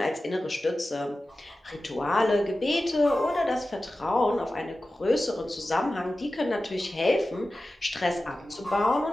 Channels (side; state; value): both; normal; correlation 0.95